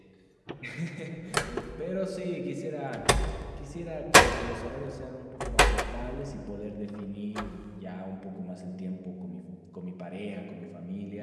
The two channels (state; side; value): identical; both; correlation 1.00